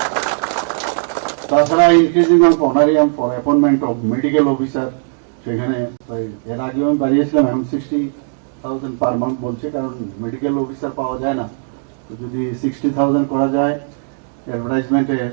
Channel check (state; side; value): silent; left; digital silence